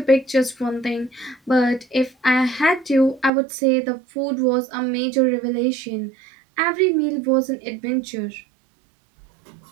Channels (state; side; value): drops out; left; at 3.3 s